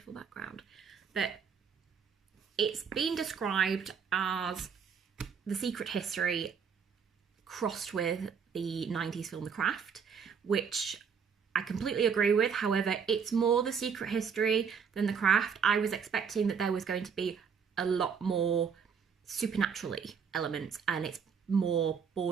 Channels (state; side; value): quieter; left; 6.6 dB